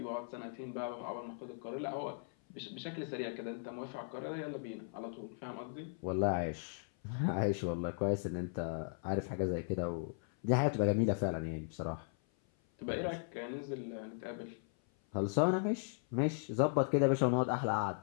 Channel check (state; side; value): silent; right; 53 dB below the other